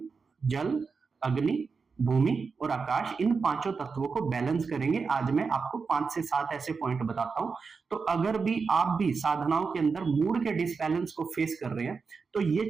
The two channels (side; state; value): left; quieter; 5.0 dB